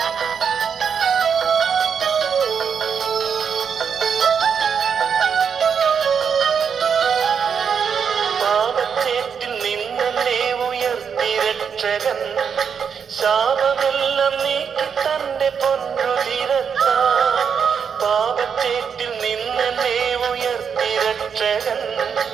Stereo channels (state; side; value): quieter; left; 6.9 dB